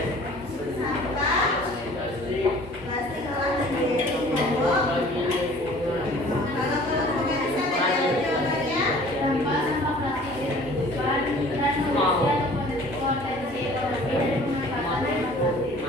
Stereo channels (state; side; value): normal; both; correlation 0.49